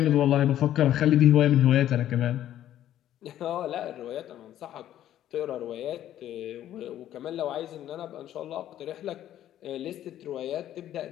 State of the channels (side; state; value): right; quieter; 12.0 dB